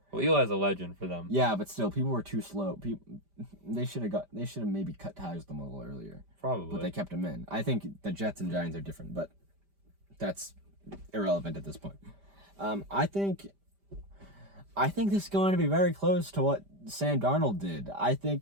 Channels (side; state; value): left; late; 5.1 ms